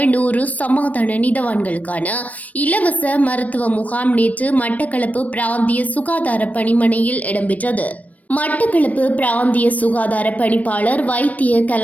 100 சமாதான நீதவான்களுக்கான இலவச மருத்துவ முகாம் நேற்று மட்டக்களப்பு பிராந்திய சுகாதார பணிமனையில் இடம்பெற்றது. மட்டக்களப்பு பிராந்திய சுகாதார பணிப்பாளர் வைத்திய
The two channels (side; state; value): right; late; 0.071 ms